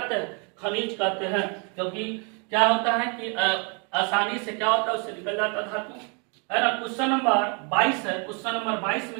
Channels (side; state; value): left; quieter; 35.0 dB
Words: हैं, खनिज कहते हैं, क्योंकि क्या होता है कि आसानी से क्या होता है, उससे निकल जाता धातु, है ना। क्वेश्चन नंबर 22 है। क्वेश्चन नंबर 22